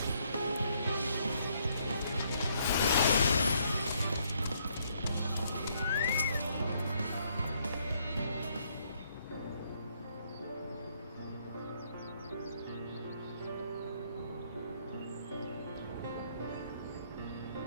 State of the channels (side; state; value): both; inverted; correlation -0.70